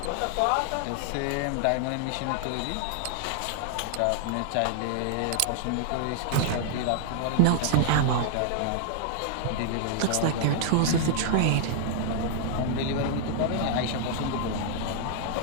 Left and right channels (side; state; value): both; different; correlation -0.01